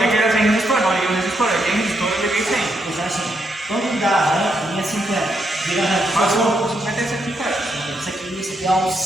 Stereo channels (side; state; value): both; normal; correlation 0.79